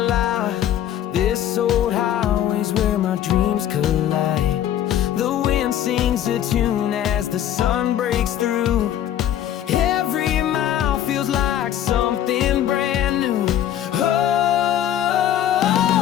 This old highway's where my dreams collide. The wind sings a tune as the sun breaks through. Every mile feels like something brand new. Oh,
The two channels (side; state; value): right; quieter; 11.1 dB